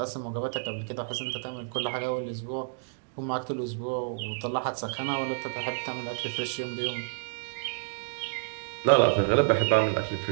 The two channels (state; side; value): silent; left; digital silence